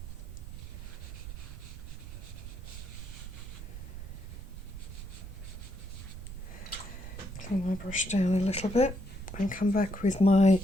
Clean my brush down a little bit and come back with my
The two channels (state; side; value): noise; right; rumble, 10 dB below the sound